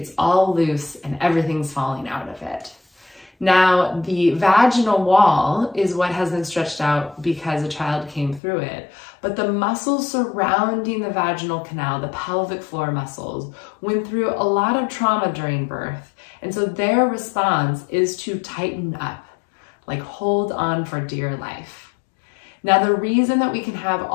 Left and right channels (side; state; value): right; drops out; at 8.4 s